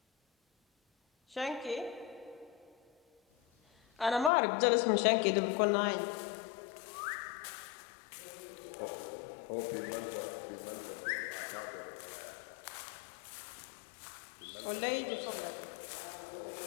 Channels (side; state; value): right; drops out; at 4.3 s